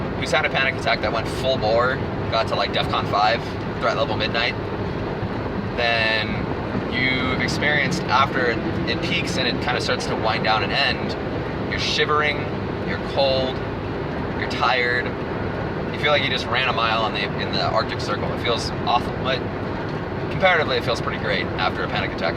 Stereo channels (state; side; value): identical; both; correlation 1.00